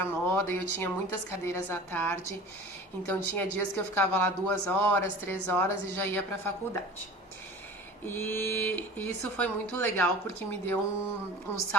moda e eu tinha muitas cadeiras à tarde. Então tinha dias que eu ficava lá 2 horas, 3 horas e já ia para a faculdade. E isso foi muito legal porque me deu um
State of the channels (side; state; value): both; normal; correlation 0.41